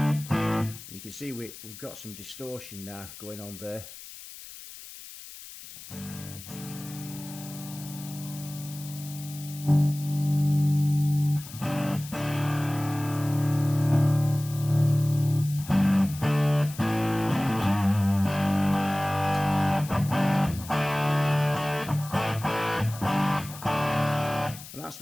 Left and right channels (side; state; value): left; noise; hiss, 15 dB below the sound